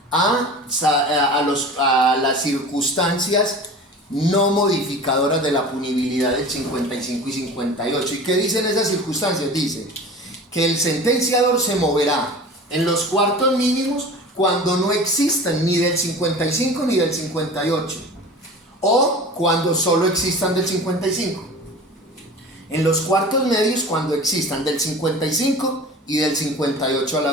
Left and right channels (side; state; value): both; normal; correlation 0.38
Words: a las circunstancias no modificadoras de la punibilidad del 55 y 58. ¿Y qué dicen esas circunstancias? Dice que el sentenciador se moverá en los cuartos mínimos cuando no existan ni del 55 ni del 58, o cuando solo existan del 55. En los cuartos medios cuando existan del 55 y del 58 a la